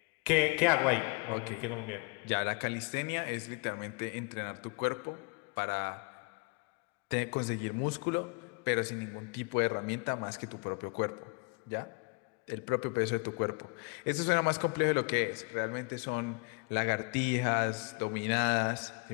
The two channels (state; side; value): quieter; right; 31.0 dB